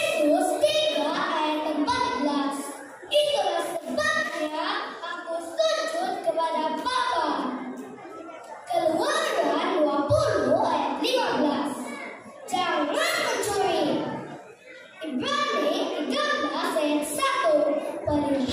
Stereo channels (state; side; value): identical; both; correlation 1.00